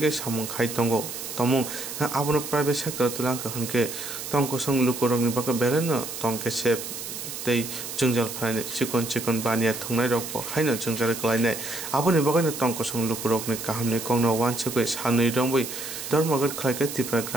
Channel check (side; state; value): right; noise; hiss, 8 dB below the sound